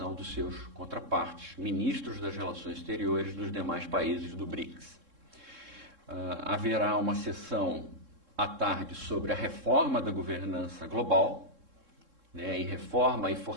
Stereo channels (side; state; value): left; late; 3.7 ms